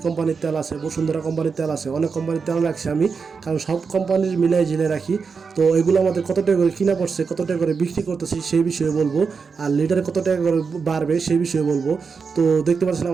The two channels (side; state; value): left; quieter; 5.3 dB